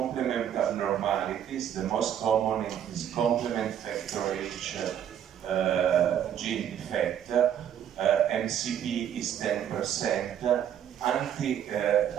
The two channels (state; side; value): quieter; left; 9.7 dB